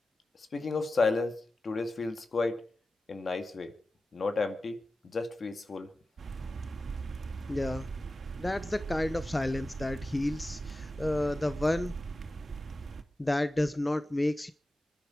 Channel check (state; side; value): normal; both; correlation 0.94